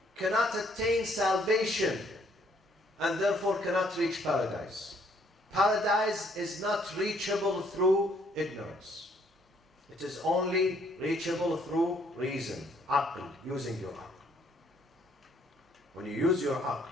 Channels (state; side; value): normal; both; correlation 0.66